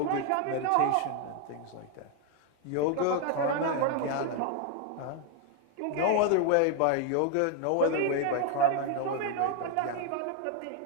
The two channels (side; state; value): both; different; correlation 0.01